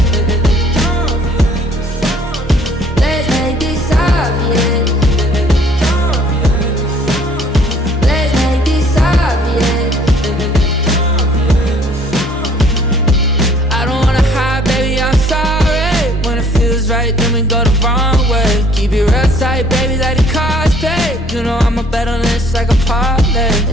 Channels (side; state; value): both; normal; correlation 0.58